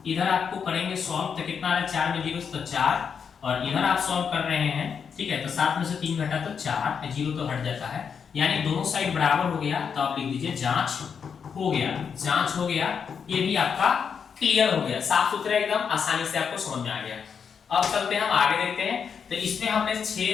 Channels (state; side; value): quieter; right; 6.7 dB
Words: इधर आपको करेंगे सॉल्व, तो कितना आ रहा है 4 में 0 से तो 4, और इधर आप सॉल्व कर रहे हैं। ठीक है, तो 7 में से 3 घटा तो 4, 0 तो हट जाता है, यानी दोनों साइड बराबर हो गया। तो आप लिख दीजिए जांच हो गया, जांच हो गया। ये भी आपका क्लियर हो गया, साफ सुथरा एकदम आसानी से आपको समझ में आ गया। अब चलते हैं हम आगे देखते हैं। तो इसमें हमने